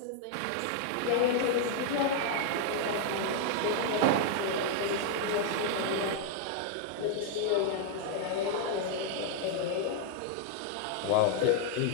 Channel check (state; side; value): different; both; correlation 0.00